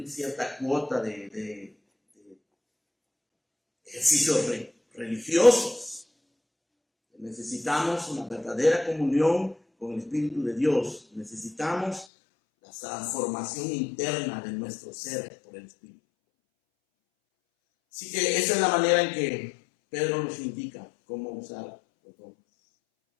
cierta cuota de ejercicios religiosos. Necesitamos una verdadera comunión con el Espíritu de Dios. Necesitamos la transformación interna de nuestro ser por el Espíritu. Así que esa es la manera en que Pedro nos indica cómo usar los dones.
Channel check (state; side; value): drops out; right; at 12.1 s